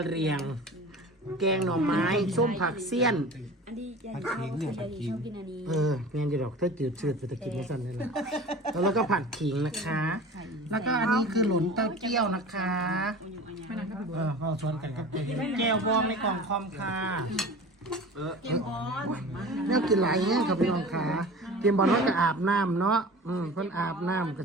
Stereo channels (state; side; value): normal; both; correlation 0.38